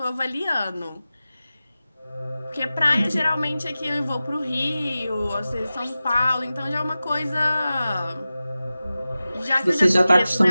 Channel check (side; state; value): both; inverted; correlation -0.95